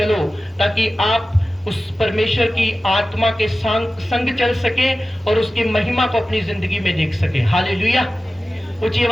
ताकि आप उस परमेश्वर की आत्मा के संग चल सके और उसकी महिमा को अपनी जिंदगी में देख सके। हालेलुया। ऊंची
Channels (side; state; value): both; normal; correlation 0.95